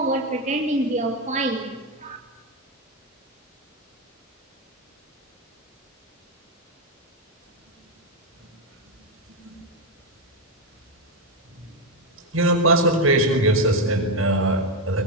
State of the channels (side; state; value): both; normal; correlation 0.08